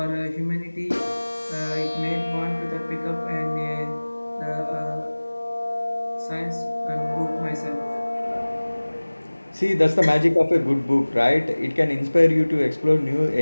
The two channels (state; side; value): inverted; both; correlation -1.00